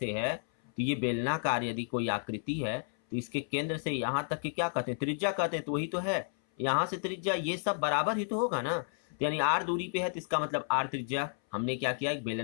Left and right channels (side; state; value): right; silent; 56 dB below the other